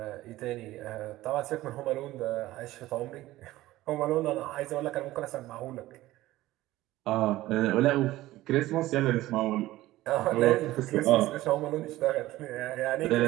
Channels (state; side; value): quieter; left; 16.6 dB